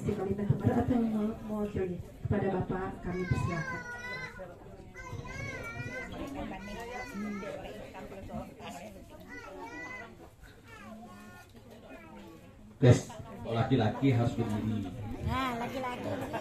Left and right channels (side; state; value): both; identical; correlation 1.00